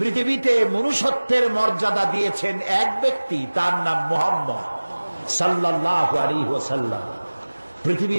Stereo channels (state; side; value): inverted; both; correlation -1.00